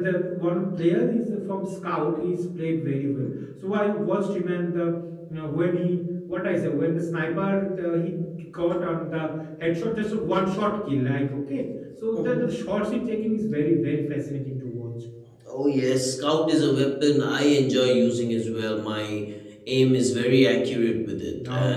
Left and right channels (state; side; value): identical; both; correlation 1.00